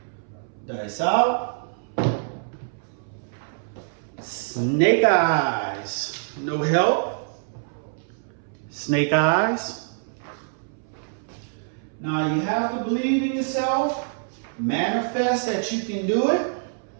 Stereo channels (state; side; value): silent; left; 61 dB below the other